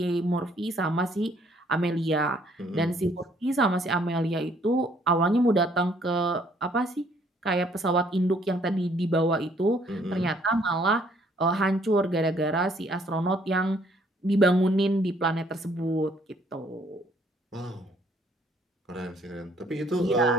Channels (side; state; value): both; normal; correlation 0.64